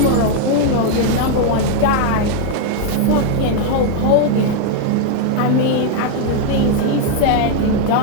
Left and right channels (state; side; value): different; both; correlation 0.00